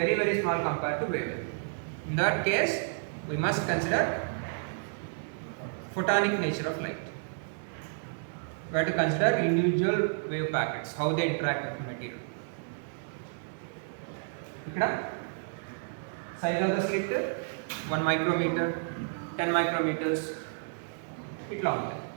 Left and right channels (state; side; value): silent; left; digital silence